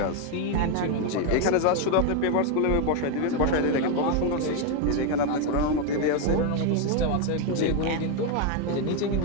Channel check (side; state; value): both; different; correlation 0.01